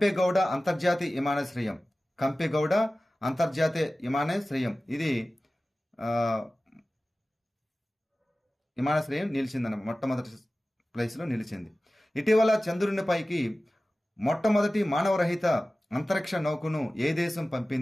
అంతర్జాతీయ విమానాశ్రయం. కంపెగౌడ అంతర్జాతీయ విమానాశ్రయం ఇది విమానాశ్రయం నిలిచిందన్న మొట్టమొదటి ప్లేస్లో నిలిచింది. ఇటీవల చంద్రునిపైకి మొట్టమొదటి మానవరహిత అంతరిక్ష నౌకను ఏ దేశం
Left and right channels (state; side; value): normal; both; correlation 0.96